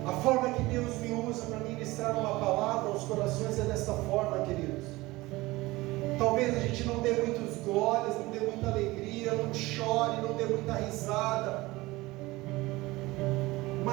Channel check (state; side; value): quieter; left; 20.3 dB